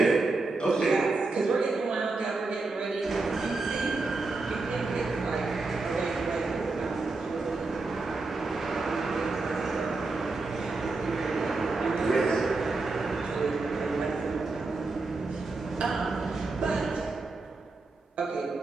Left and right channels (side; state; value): left; quieter; 3.6 dB